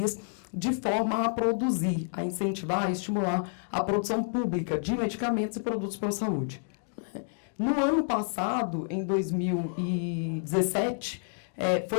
de forma a produzir, a incentivar, a estimular a produção pública de medicamentos e produtos para a saúde. No ano passado, em 2017,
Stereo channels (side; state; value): right; silent; digital silence